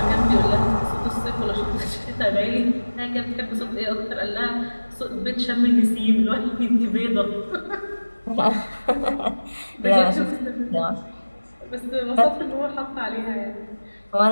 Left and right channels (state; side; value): inverted; both; correlation -1.00